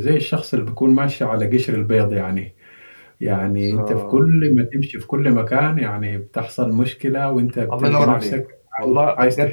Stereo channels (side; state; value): both; inverted; correlation -1.00